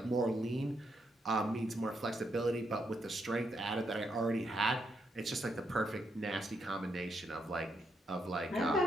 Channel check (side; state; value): both; normal; correlation 0.79